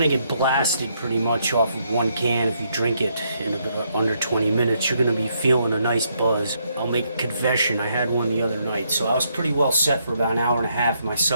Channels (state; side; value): inverted; both; correlation -0.75